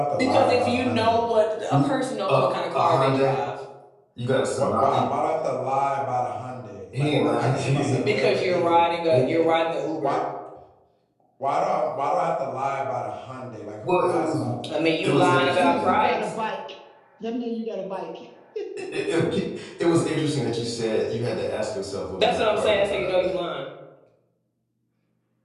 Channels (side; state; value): both; identical; correlation 1.00